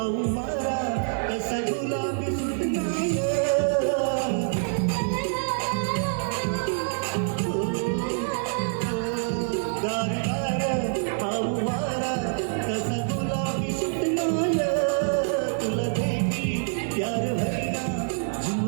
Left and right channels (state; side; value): silent; left; digital silence